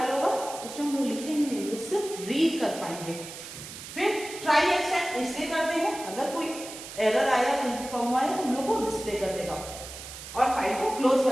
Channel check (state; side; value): noise; right; hiss, 12 dB below the sound